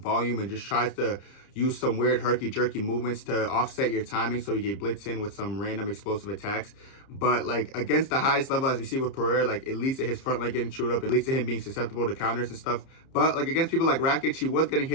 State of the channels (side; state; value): right; late; 30 ms